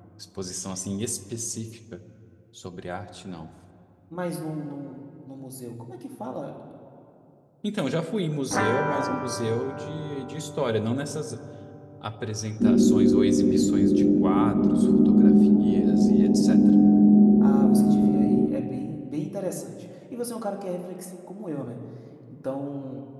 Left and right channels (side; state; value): both; identical; correlation 1.00